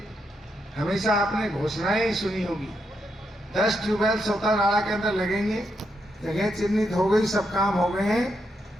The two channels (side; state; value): both; normal; correlation 0.81